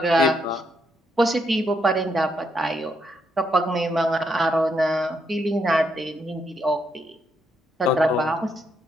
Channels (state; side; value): normal; both; correlation 0.77